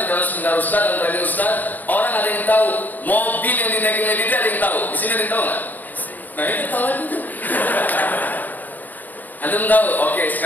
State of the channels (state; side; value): late; right; 0.085 ms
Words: dalam seminar Ustaz dan radio Ustaz, orang ada yang tahu mobil yang dinaikin Lady Di, ada yang tahu. Di sini ada yang tahu nggak? Nah itu tahu itu. Antum tahu? Oke,